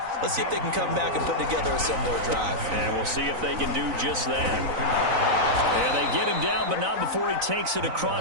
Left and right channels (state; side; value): late; left; 4.0 ms